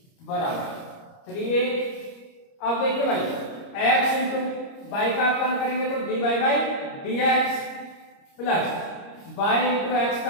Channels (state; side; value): late; right; 30 ms